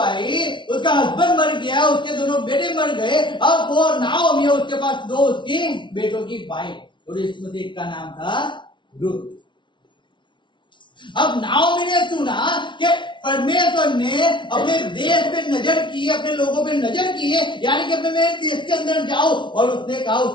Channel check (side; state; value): right; late; 0.24 ms